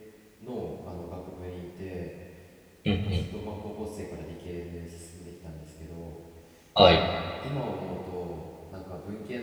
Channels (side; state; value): both; identical; correlation 1.00